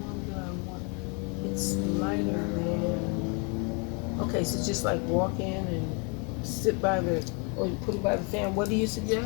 that I want, it's lighter there. Okay, so just like walk in and sit by the, or you put it by the fan. What do you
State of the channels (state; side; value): quieter; right; 34.5 dB